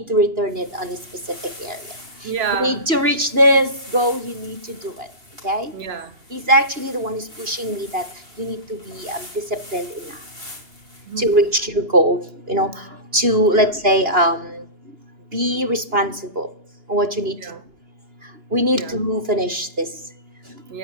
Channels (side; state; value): left; late; 2.8 ms